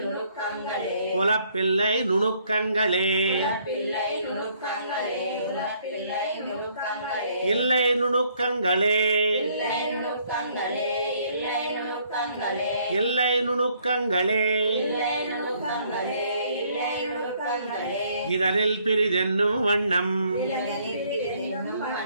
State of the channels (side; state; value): both; inverted; correlation -0.66